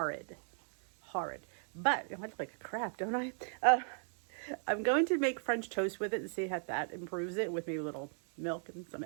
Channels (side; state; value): left; silent; 53 dB below the other